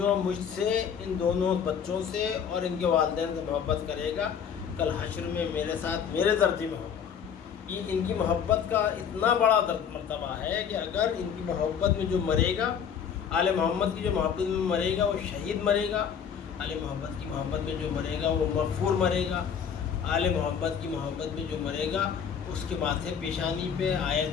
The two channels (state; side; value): quieter; right; 7.6 dB